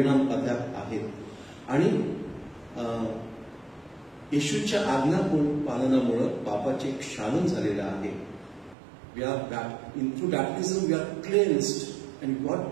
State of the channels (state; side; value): drops out; left; at 8.8 s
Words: अद्याप आहेत. आणि येशूच्या आज्ञा पालनामुळे पापाचे क्षालन झालेलं आहे. We are through baptism we are cleansed, and